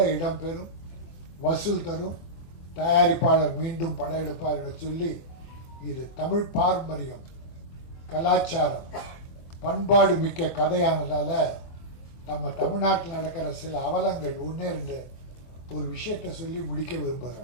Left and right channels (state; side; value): late; right; 24 ms